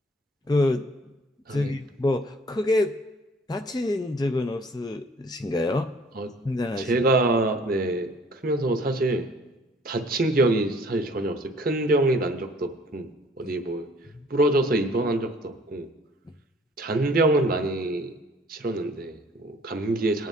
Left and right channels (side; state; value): both; normal; correlation 0.55